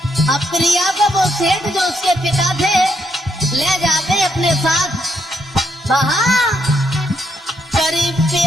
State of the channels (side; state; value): both; normal; correlation 0.77